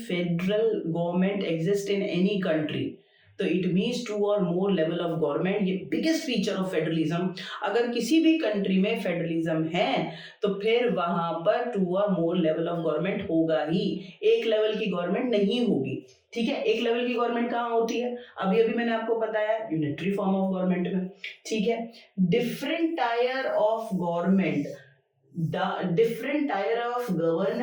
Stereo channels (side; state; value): both; identical; correlation 1.00